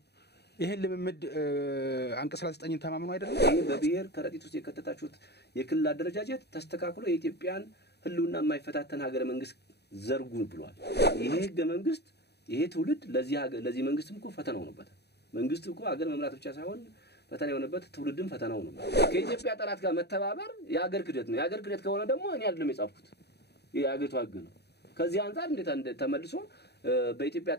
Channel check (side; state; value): right; late; 0.48 ms